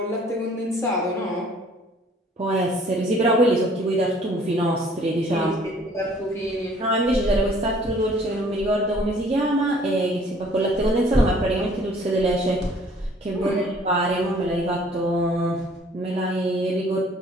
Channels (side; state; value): both; normal; correlation 0.56